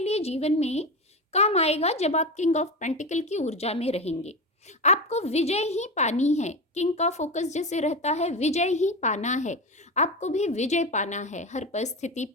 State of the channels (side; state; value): both; normal; correlation 0.21